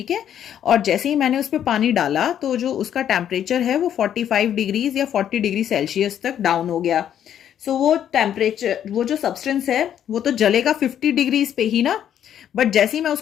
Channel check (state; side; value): quieter; right; 9.9 dB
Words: है. और जैसे ही मैंने उस पर पानी डाला तो जो उसका टेम्परेचर है वो 45 डिग्रीज या 40 डिग्री सेल्सियस तक डाउन हो गया. सो वो टेम्परेचर, वो जो सब्सटेंस है वो तो जलेगा 50 डिग्रीज पे ही ना, बट जैसे ही मैं